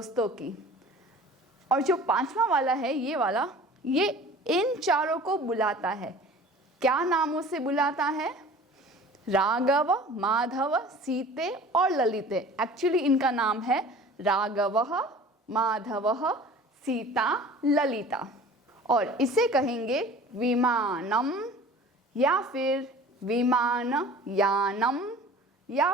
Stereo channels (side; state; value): both; normal; correlation 0.44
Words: की, और जो पांचवा वाला है ये वाला, ये इन चारों को बुलाता है। क्या नामों से बुलाता है? राघव, माधव, सीते और ललिते। एक्चुअली इनका नाम है राघवः, माधवः, सीता, ललिता। और इसे कहेंगे विमानम या फिर विमानयानम या